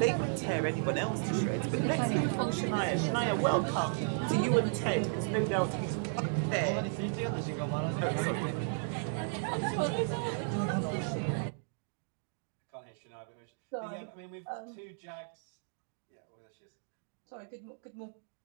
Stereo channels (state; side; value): silent; left; digital silence